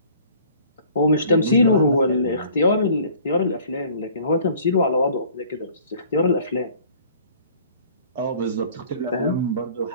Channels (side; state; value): both; inverted; correlation -0.51